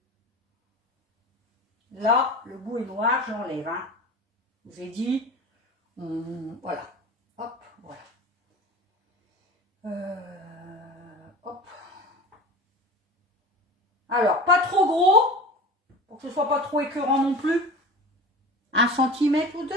Là, le bout est noir, j'enlève. Hein. Je vous ai dit, voilà. Hop, voilà. Hop. Alors, pas trop gros, pour que ce ne soit pas trop écœurant non plus. 1 centimètre ou 2,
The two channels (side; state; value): both; normal; correlation 0.34